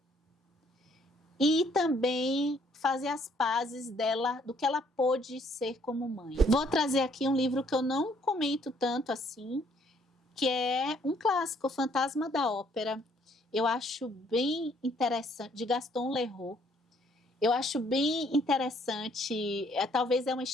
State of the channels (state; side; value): normal; both; correlation 0.65